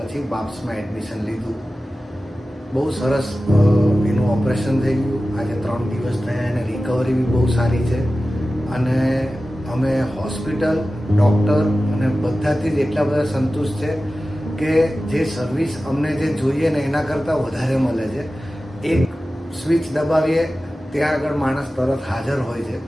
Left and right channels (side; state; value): both; normal; correlation 0.95